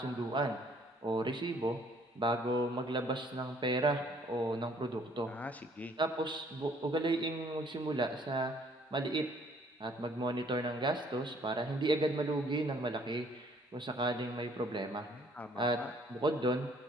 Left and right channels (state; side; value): normal; both; correlation 0.61